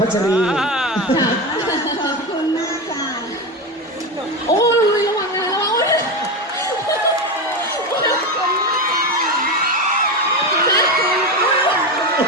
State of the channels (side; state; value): both; normal; correlation 0.18